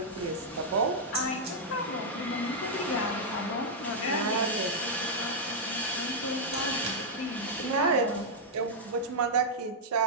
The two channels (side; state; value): both; normal; correlation -0.04